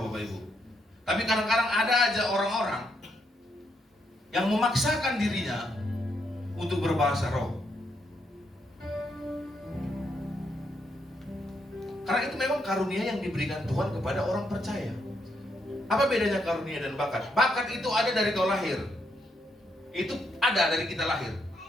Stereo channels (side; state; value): both; normal; correlation 0.77